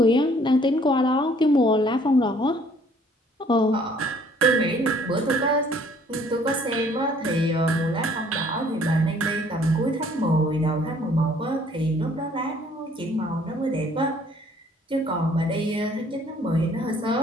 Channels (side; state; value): both; normal; correlation 0.59